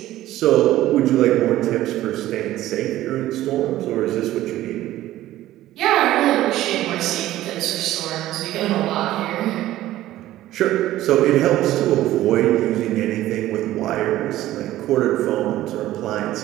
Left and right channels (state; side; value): quieter; left; 14.7 dB